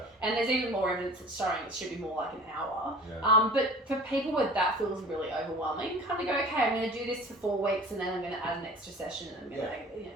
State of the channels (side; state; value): both; normal; correlation 0.42